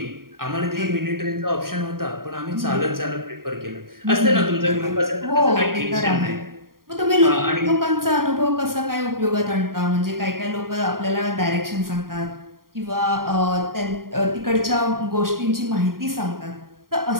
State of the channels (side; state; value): left; late; 0.92 ms